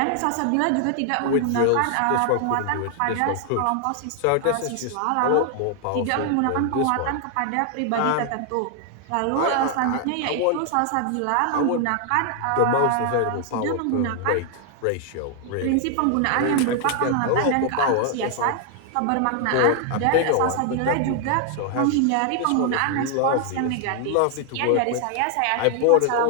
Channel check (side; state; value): both; different; correlation 0.00